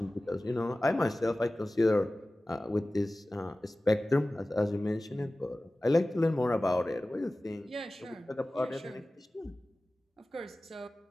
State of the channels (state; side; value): normal; both; correlation 0.97